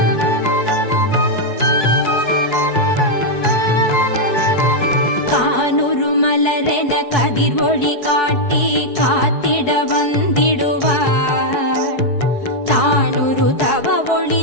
கதிர் ஒளி காட்டி காத்திட வந்திடுவார் தானுரு தவ ஒளி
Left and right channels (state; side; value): late; right; 4.7 ms